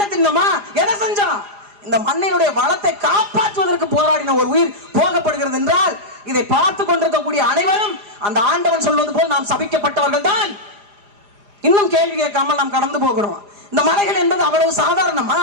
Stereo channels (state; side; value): late; left; 4.9 ms